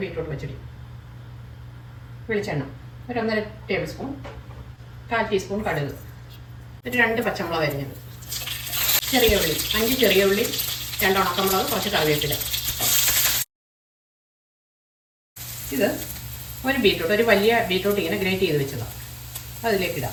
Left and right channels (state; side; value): identical; both; correlation 1.00